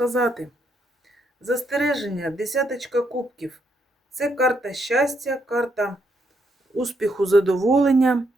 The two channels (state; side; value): normal; both; correlation 0.76